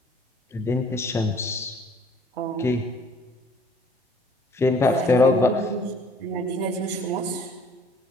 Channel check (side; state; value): both; normal; correlation 0.57